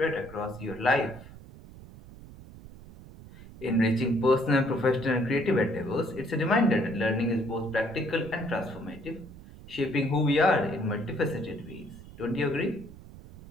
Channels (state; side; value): noise; right; rumble, 17 dB below the sound